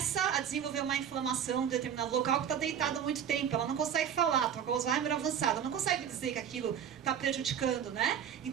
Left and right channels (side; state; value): left; quieter; 8.7 dB